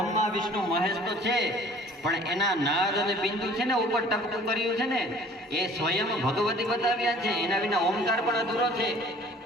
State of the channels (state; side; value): normal; both; correlation 0.50